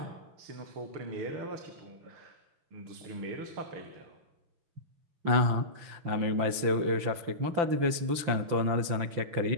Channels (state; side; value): late; left; 5.9 ms